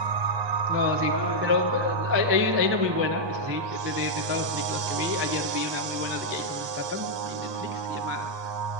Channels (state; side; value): late; left; 1.2 ms